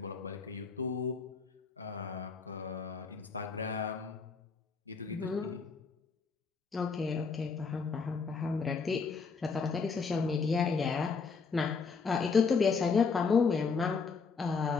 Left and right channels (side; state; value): right; quieter; 5.1 dB